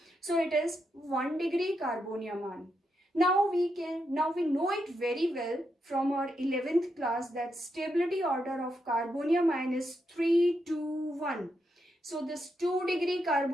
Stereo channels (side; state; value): both; normal; correlation 0.82